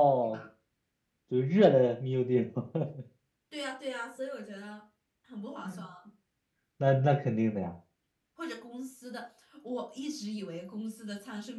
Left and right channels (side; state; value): both; identical; correlation 1.00